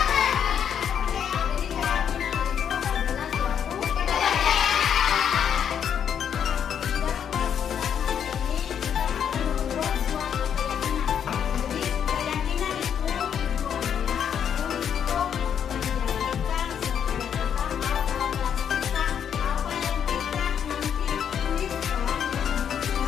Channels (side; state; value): right; quieter; 8.4 dB